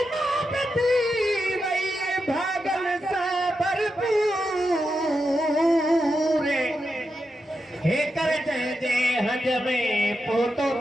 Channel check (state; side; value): normal; both; correlation 0.87